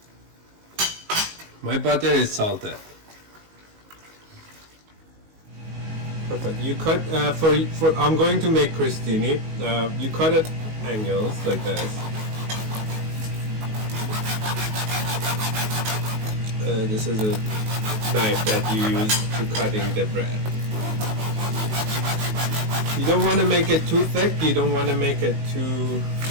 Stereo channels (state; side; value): late; left; 19 ms